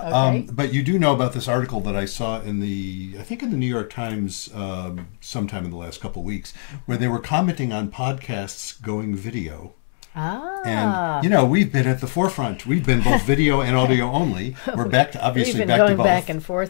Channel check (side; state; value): right; silent; digital silence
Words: okay. But you do know about this article that I saw in I think in the New York Times sometime in the last couple of weeks, where they were commenting on podcasts going video. And, you know, we've been at the forefront. We've been both video and audio only. We're back to, obviously, back to both. We've been going back and